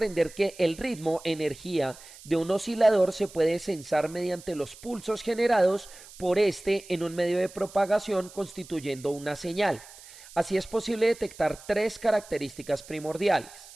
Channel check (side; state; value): right; noise; hiss, 19 dB below the sound